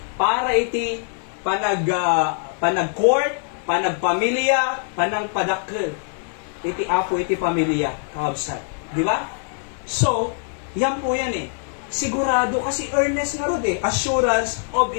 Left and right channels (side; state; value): right; silent; 55 dB below the other